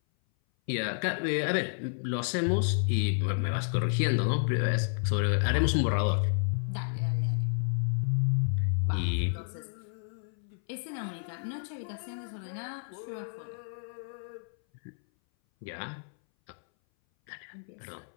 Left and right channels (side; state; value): right; silent; 57 dB below the other